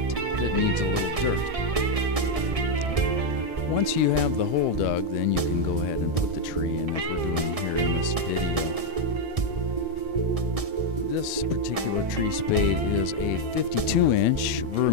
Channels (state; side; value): late; left; 1.6 ms